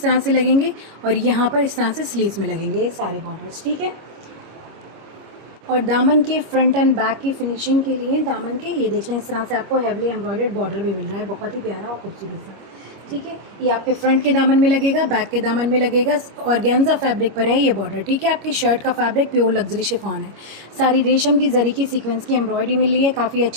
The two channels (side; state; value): left; late; 25 ms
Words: तरह से लगेंगे और यहाँ पर इस तरह से स्लीव्स में लगेंगे ये सारे बॉर्डर्स। ठीक है, और दामन के फ्रंट एंड बैक की फिनिशिंग के लिए दामन के ये देख लें, इस तरह से आपको हेवली एम्ब्रॉयडर्ड बॉर्डर भी मिल रहा है, बहुत ही प्यारा और खूबसूरत सा। ठीक है, ये आपके फ्रंट के दामन में लगेगा, बैक के दामन में लगेगा। ऑर्गेन्जा फैब्रिक पर है ये बॉर्डर। ठीक है, आपकी शर्ट का फैब्रिक प्योर लग्जरी शिफॉन है। सारी रेशम की जरी की सीक्वेंस की एम्ब्रॉयडरी मिल रही है। काफ़ी